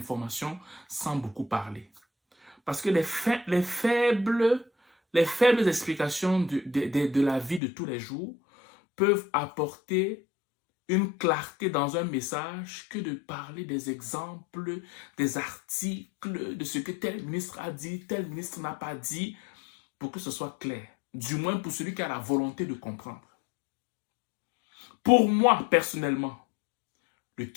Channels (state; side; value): drops out; right; at 7.6 s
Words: sans beaucoup parler. Parce que les faibles explications de la vie de tous les jours peuvent apporter une clarté dans un message que de parler des exemples, des articles, de ce que tel ministre a dit, tel ministre n'a pas dit, pour que ce soit clair. Du moins pour celui qui a la volonté de comprendre. Pour moi, personnellement, le